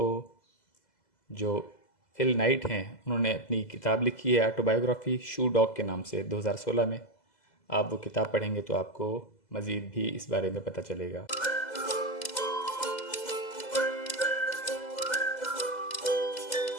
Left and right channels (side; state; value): right; late; 2.0 ms